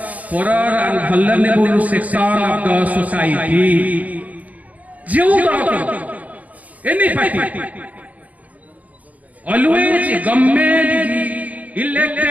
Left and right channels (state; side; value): late; left; 0.073 ms